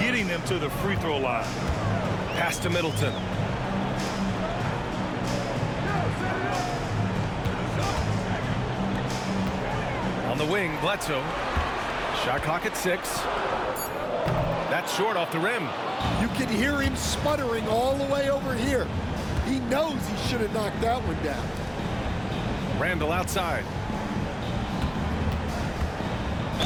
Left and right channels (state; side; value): identical; both; correlation 1.00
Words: them to the free throw line. Pass to Middleton. On the wing, Bledsoe. Shot clock at 6. That's short off the rim. You can hear him sputtering all the way over here. He knows he should have knocked that one down. Randle outside.